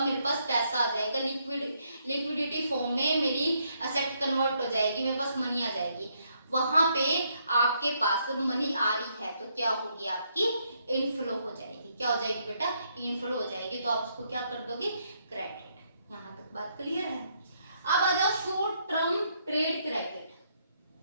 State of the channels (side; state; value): both; inverted; correlation -0.74